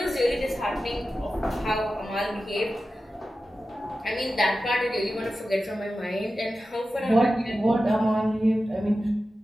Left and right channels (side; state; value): both; normal; correlation 0.93